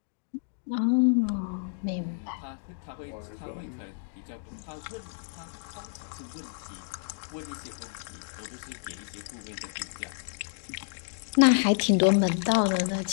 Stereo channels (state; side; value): silent; right; digital silence